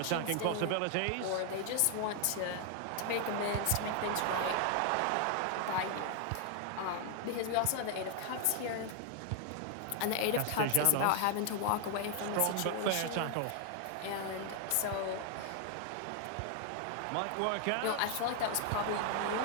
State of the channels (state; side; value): different; both; correlation 0.00